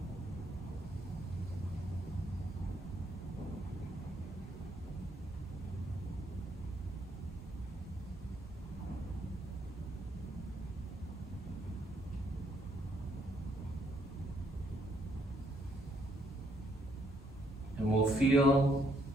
And we'll feel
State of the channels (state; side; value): normal; both; correlation 0.71